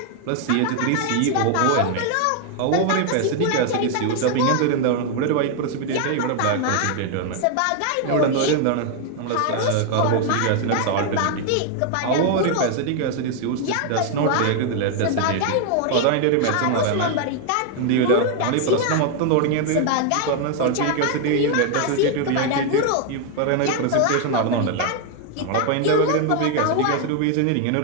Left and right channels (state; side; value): different; both; correlation 0.00